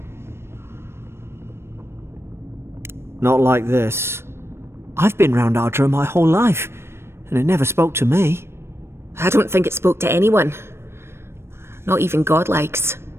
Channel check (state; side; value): late; left; 0.12 ms